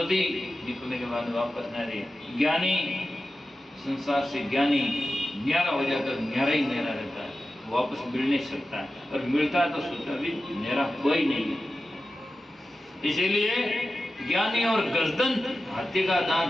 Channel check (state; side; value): normal; both; correlation 0.93